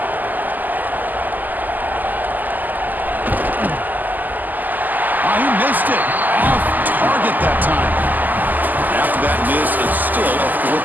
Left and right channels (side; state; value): left; late; 0.084 ms